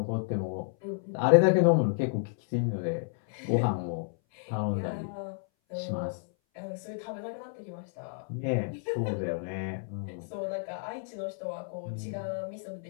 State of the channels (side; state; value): right; silent; 57 dB below the other